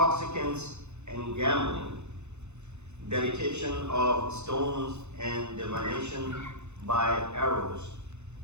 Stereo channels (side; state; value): left; late; 0.82 ms